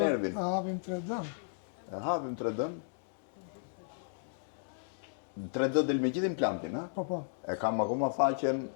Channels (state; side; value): silent; right; digital silence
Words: Ta hapim 3D. E hapim 3D-n. 3D del me gjithë implantin, ha? Po, po. E kam akoma faqen